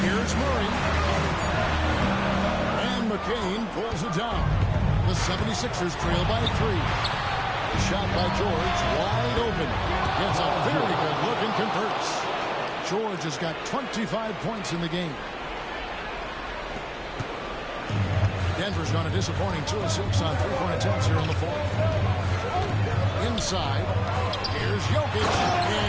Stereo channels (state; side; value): identical; both; correlation 1.00